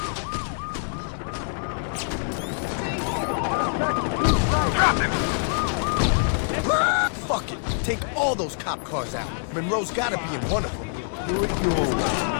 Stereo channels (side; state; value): right; silent; digital silence